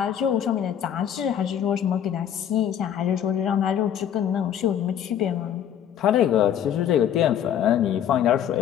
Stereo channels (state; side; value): quieter; right; 9.6 dB